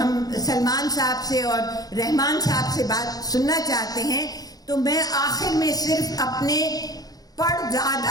सलमान साहब से और रहमान साहब से बात सुनना चाहते हैं। तो मैं आखिर में सिर्फ अपने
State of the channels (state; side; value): late; right; 0.18 ms